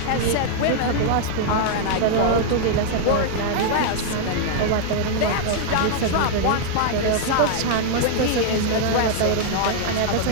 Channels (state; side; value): different; both; correlation -0.01